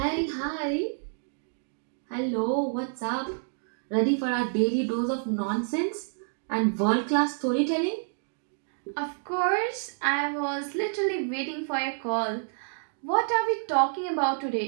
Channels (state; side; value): silent; left; digital silence